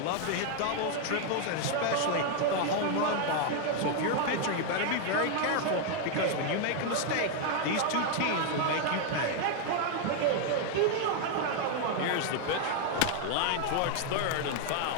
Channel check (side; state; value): both; different; correlation 0.00